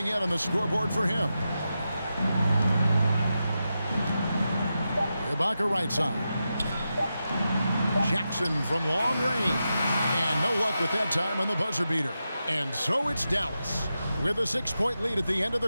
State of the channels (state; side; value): inverted; both; correlation -0.89